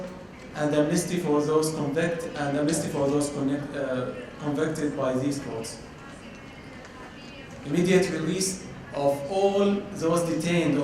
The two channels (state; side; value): identical; both; correlation 1.00